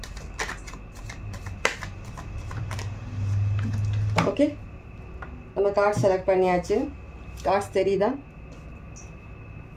ஓகே, நம்ம கார்டு செலக்ட் பண்ணியாச்சு. கார்ட்ஸ் தெரியுதா?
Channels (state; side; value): identical; both; correlation 1.00